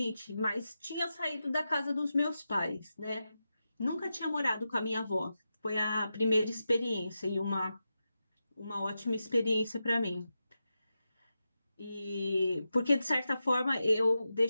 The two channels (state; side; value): inverted; both; correlation -0.90